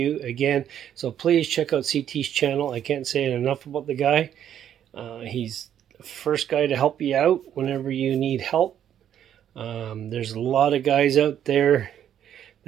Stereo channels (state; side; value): quieter; left; 10.0 dB